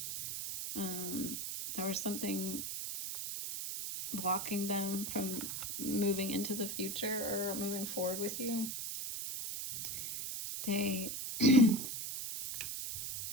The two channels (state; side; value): noise; right; hiss, 4 dB below the sound